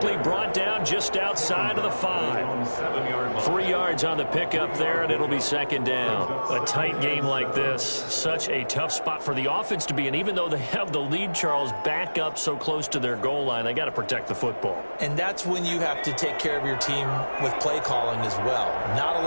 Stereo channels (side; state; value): both; inverted; correlation -1.00